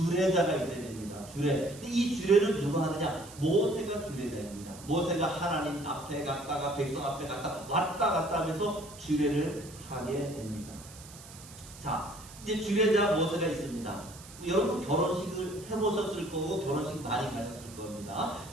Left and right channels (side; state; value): right; noise; hiss, 18 dB below the sound